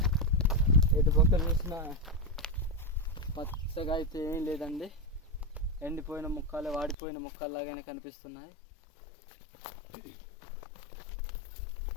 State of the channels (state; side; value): drops out; right; at 7.0 s